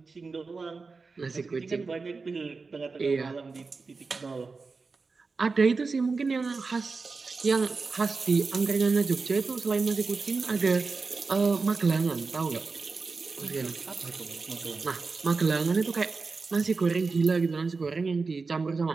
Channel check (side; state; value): left; quieter; 4.3 dB